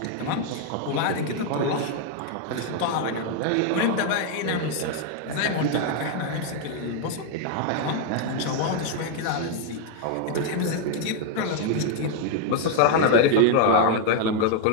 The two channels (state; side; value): different; both; correlation 0.00